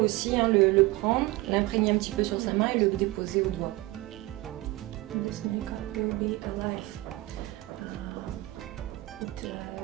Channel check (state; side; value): quieter; left; 19.7 dB